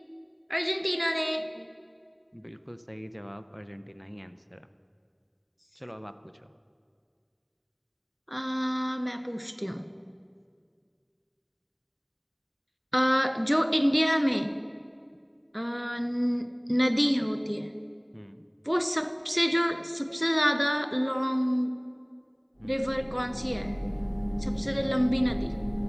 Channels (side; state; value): both; identical; correlation 1.00